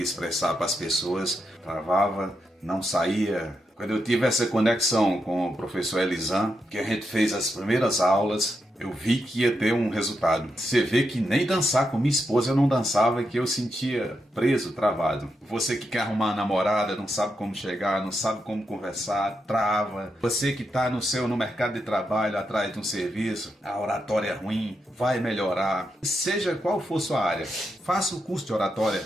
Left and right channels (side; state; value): both; normal; correlation 0.84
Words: expressar para as pessoas, travava, não saía. Quando eu tive essa conexão com o professor Elisan, que a gente fez as primeiras aulas, eu vi que ia ter um resultado. Você vê que nem dançar com minha esposa eu não dançava, que eu sentia preso, travado. Você que quer arrumar uma namorada, não sabe como chegar, não sabe como conversar, trava. Você que está no mercado de trabalho, atrás de um serviço, a oratória é ruim, vai melhorar. Seja qual for sua área, faça o curso de oratória